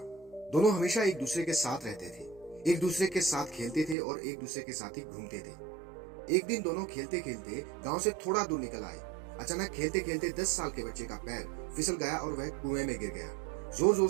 दोनों हमेशा एक दूसरे के साथ रहते थे, एक दूसरे के साथ खेलते थे और एक दूसरे के साथ ही घूमते थे। एक दिन दोनों खेलते खेलते गांव से थोड़ा दूर निकल आए। अचानक खेलते खेलते 10 साल के बच्चे का पैर फिसल गया और वह कुएं में गिर गया। जोर जोर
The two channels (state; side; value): drops out; left; at 4.0 s